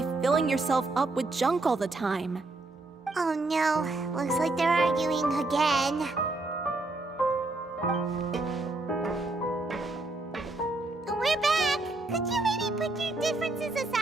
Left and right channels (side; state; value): left; quieter; 3.0 dB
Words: filling yourself up with junk all the time. Oh no, looks like they're arguing again. We're back! Could you maybe put your differences